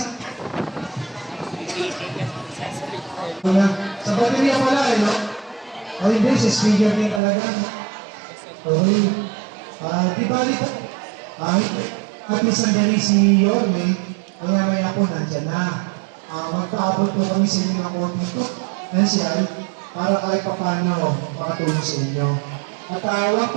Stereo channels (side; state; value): left; drops out; at 7.2 s